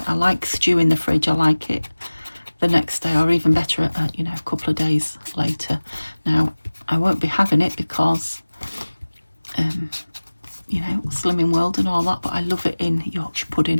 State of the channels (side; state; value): both; inverted; correlation -1.00